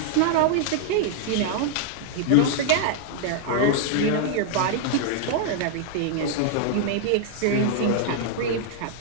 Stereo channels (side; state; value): both; different; correlation -0.01